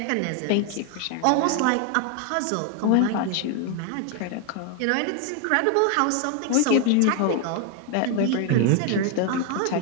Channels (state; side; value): different; both; correlation 0.01